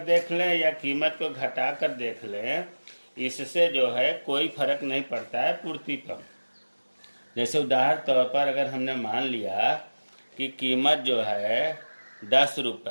देख लें या कीमत को घटाकर देख लें, इससे जो है कोई फर्क नहीं पड़ता है पूर्ति पर। जैसे उदाहरण तौर पर अगर हमने मान लिया कि कीमत जो है 10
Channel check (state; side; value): inverted; both; correlation -1.00